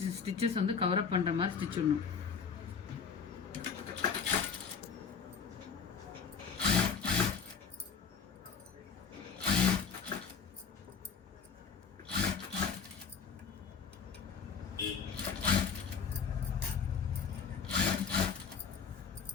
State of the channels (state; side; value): quieter; right; 6.2 dB